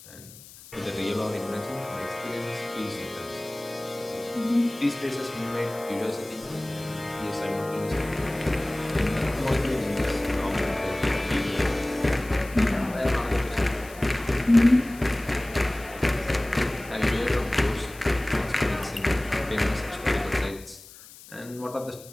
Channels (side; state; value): left; noise; hiss, 19 dB below the sound